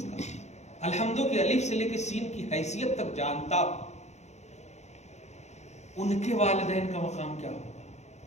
کا الحمد کی الف سے لے کے سین کی حیثیت تک جانتا. ان کے والدین کا مقام کیا ہوگا؟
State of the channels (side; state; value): right; late; 0.33 ms